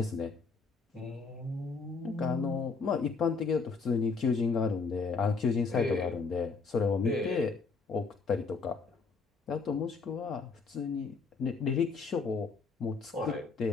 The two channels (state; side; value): quieter; right; 4.7 dB